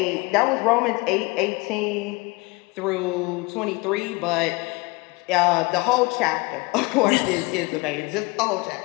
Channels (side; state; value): right; quieter; 25.7 dB